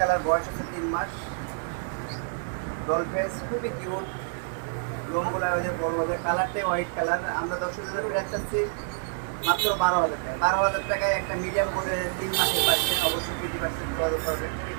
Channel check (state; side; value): silent; left; digital silence